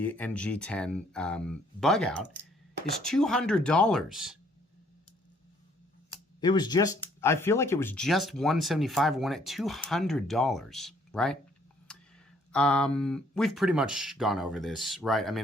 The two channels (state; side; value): normal; both; correlation 0.64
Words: and G10 Bugout is $200. It was just, I feel like it was just $175, one at $200, right? We've pretty much gone over this, right? I